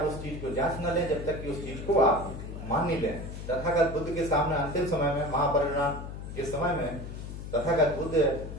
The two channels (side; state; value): left; noise; hum, 9 dB below the sound